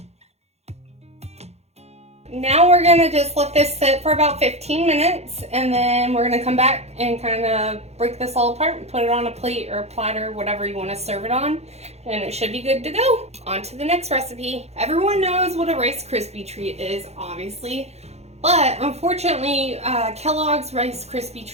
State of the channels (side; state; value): left; late; 0.31 ms